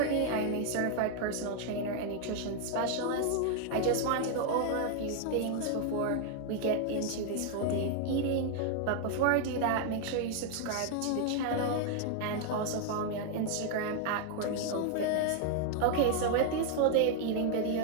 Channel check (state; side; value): different; both; correlation 0.00